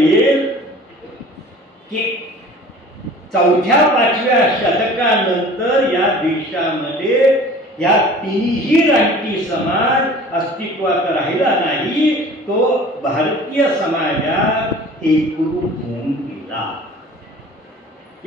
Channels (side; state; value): both; normal; correlation 0.45